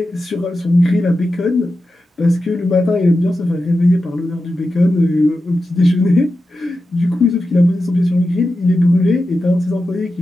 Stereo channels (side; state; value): both; normal; correlation 0.91